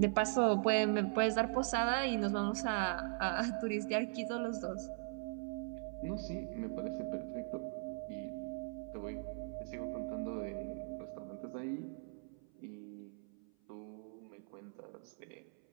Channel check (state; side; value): silent; left; 51 dB below the other